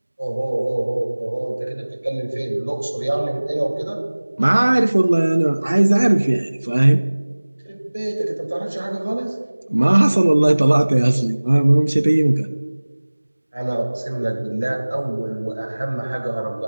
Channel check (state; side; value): inverted; both; correlation -1.00